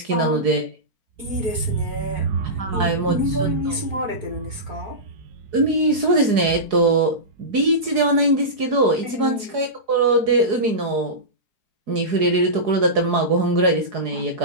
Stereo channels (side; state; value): left; late; 4.7 ms